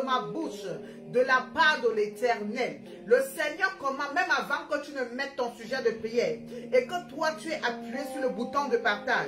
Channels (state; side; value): identical; both; correlation 1.00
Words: ma bouche de la part de l'Éternel. Le Seigneur commande, même avant que tu ne mettes ton sujet de prière, et que toi tu es appuyé sur le bouton de